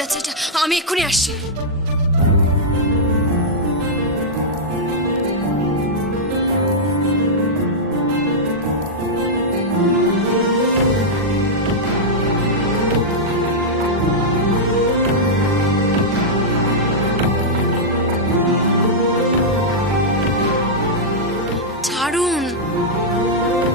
যাচ্ছে এটা। আমি এক্ষুনি আসছি। ছাড়ুন।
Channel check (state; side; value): normal; both; correlation -0.07